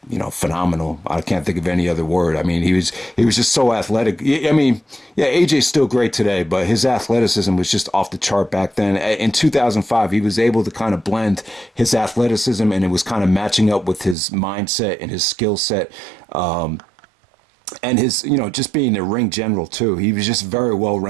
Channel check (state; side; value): drops out; left; at 14.2 s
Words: phenomenal. I can't think of any other word. I mean, he was just so athletic. I mean, yeah, AJ's still great today, but his athleticism was just off the chart back then. In 2005, he was able to kind of blend his athleticism, and it was kind of matching up with his mindset and his skill set. And his, just being a ring general, too. He was just very